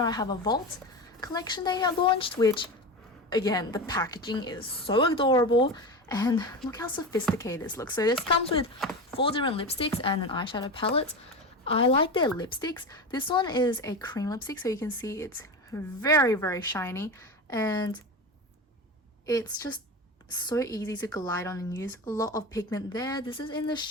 I have a Vault collection they have launched, which again, the packaging is so adorable. And look how sophisticated this looks. So this comes with 4 different lipsticks and an eyeshadow palette. I like their lipsticks. This one is a cream lipstick, so you can see it's very, very shiny. And it's just so easy to glide on and use. A lot of pigment there. This is in the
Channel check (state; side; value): normal; both; correlation 0.24